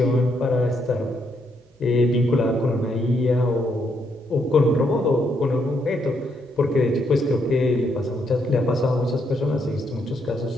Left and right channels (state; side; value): normal; both; correlation 0.75